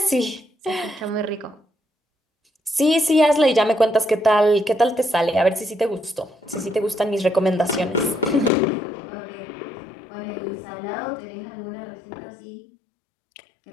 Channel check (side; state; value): right; drops out; at 8.5 s